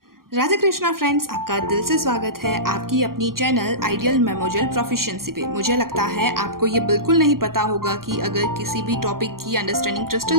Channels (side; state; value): left; late; 0.92 ms